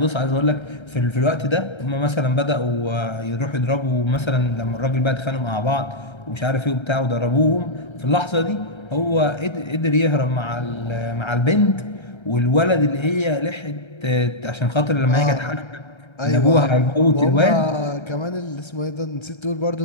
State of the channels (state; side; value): late; right; 1.3 ms